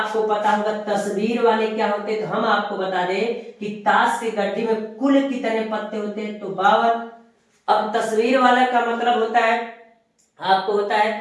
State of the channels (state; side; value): identical; both; correlation 1.00